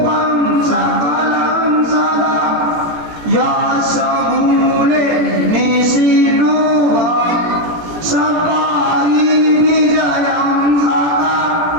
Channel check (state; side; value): late; left; 17 ms